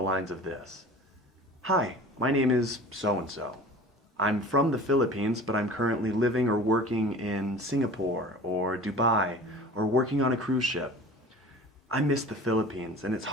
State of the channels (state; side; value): normal; both; correlation 0.40